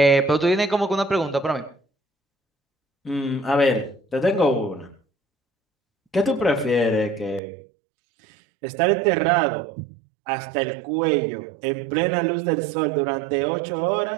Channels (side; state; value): left; drops out; at 7.4 s